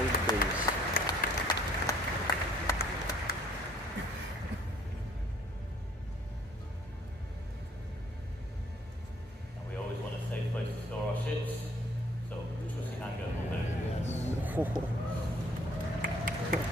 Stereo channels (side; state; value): both; normal; correlation 0.60